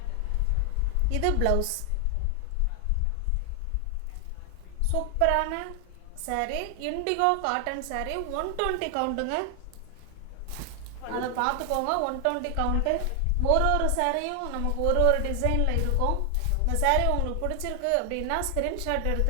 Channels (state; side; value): different; both; correlation 0.00